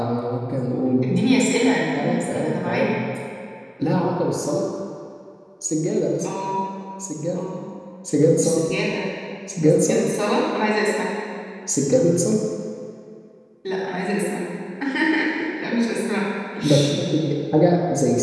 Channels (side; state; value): both; identical; correlation 1.00